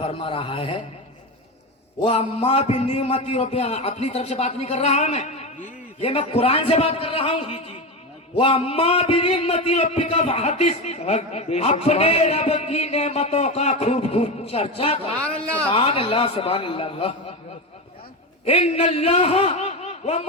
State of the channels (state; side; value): normal; both; correlation 0.19